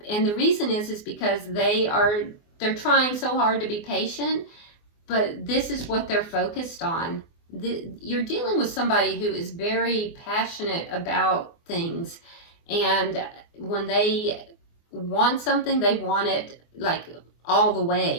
and the reason is because they're trying so hard to be patient, but this is what they're focused on. You're dealing with somebody who is very passionate about things, and when they want something, they want it like all the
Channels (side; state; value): right; late; 24 ms